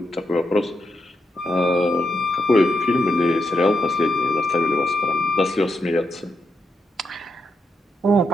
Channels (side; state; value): both; normal; correlation 0.83